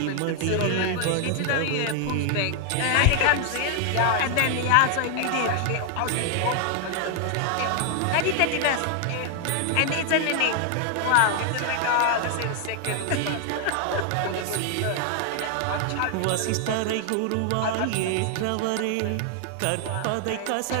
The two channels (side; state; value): both; different; correlation 0.00